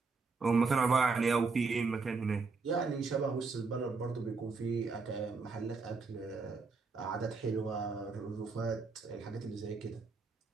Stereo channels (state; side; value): quieter; left; 4.4 dB